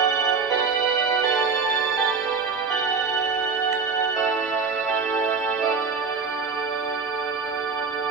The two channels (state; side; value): quieter; left; 5.0 dB